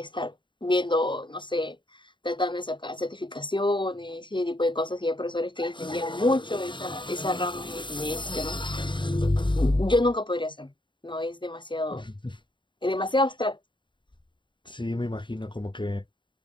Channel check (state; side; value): late; right; 0.23 ms